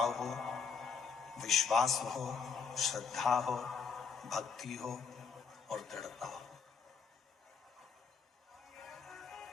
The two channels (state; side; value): quieter; right; 5.8 dB